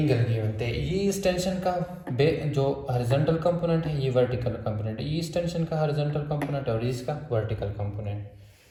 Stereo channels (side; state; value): both; identical; correlation 1.00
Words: गिवन थे। ये इस टेंशन का जो हॉरिजॉन्टल कंपोनेंट है, ये वर्टिकल कंपोनेंट है, ये इस टेंशन का हॉरिजॉन्टल कंपोनेंट और इसका वर्टिकल कंपोनेंट,